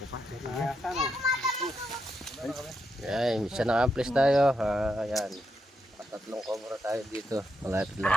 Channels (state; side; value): normal; both; correlation 0.82